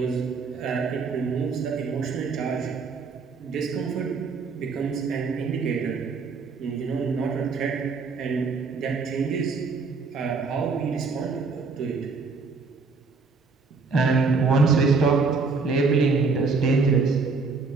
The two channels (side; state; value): left; quieter; 4.6 dB